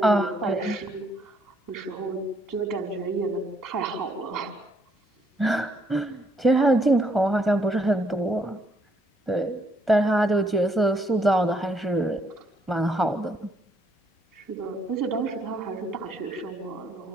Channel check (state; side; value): normal; both; correlation 0.71